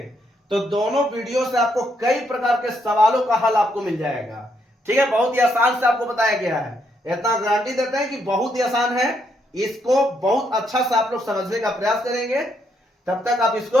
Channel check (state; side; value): normal; both; correlation 0.75